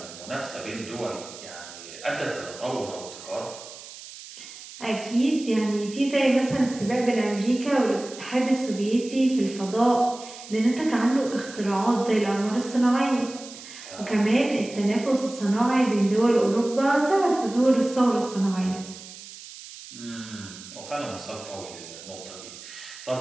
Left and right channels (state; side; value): noise; right; hiss, 15 dB below the sound